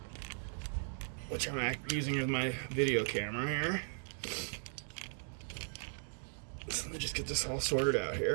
which I'm using as my video camera here. So let me just get this all sorted out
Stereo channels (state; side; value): silent; left; 53 dB below the other